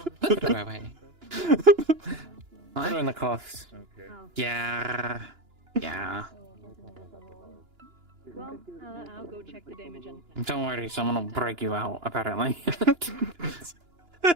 Put her away. Put her in the cuffs. Yeah. Yeah. Well, I'll go check the damage and... Don't worry, someone will break you out, apparently.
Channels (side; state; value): left; late; 2.9 ms